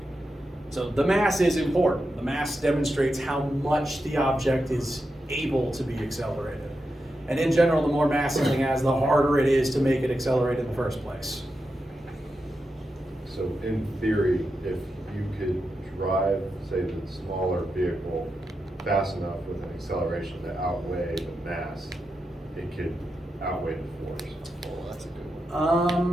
So the mass is important. The mass demonstrates how much the object is able to be accelerated. And in general, the more mass something has, the harder it is to make it accelerate in the first place. So in theory, if you could drive, say, the smaller vehicle fast enough with an acceleration to outweigh the mass, it could outweigh the force. Oh, that's a good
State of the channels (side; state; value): both; normal; correlation 0.88